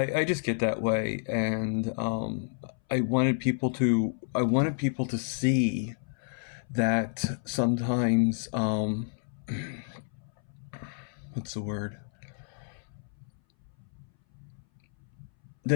just get that way, and I wanted people to see that sometimes what's the word,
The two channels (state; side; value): silent; right; 58 dB below the other